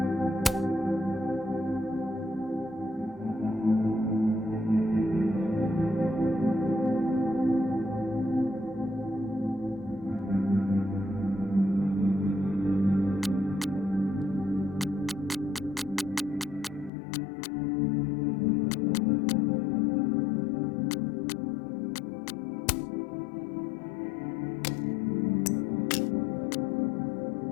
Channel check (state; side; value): drops out; right; at 16.9 s